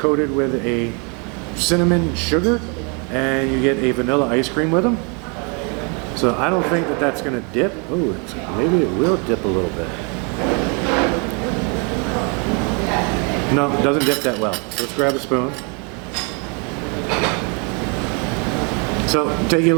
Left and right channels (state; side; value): quieter; left; 34.9 dB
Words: with a cinnamon sugar, and you get a vanilla ice cream with them. So I don't think that that's gonna dip. Oh, maybe it will dip a little bit. No, it doesn't dip that well. So let's grab a spoon. So take you a